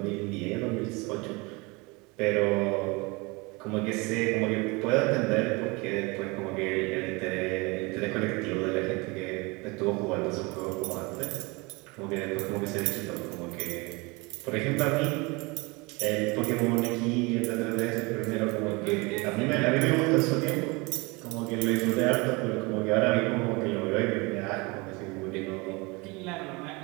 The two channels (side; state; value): left; quieter; 26.4 dB